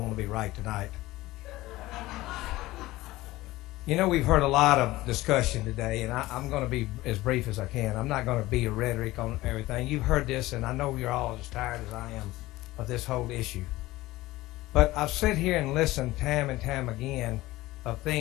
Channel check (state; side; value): quieter; right; 18.1 dB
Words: to be right tonight. You know, we've heard a lot of discussion today, and I'm going to be as brief as I can. I'm not going to be a rhetoric on everything. You've heard this, and I know you're all as tired as I am of this whole issue. But I've sat here and listened time and time again of